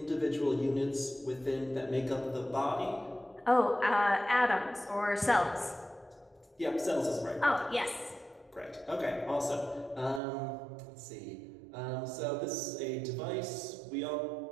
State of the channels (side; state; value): left; drops out; at 10.2 s